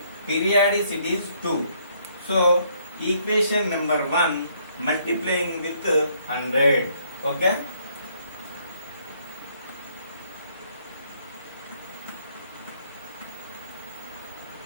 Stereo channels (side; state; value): both; inverted; correlation -0.67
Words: periodicity is 2. So equation number 1 multiplying with 100. Okay.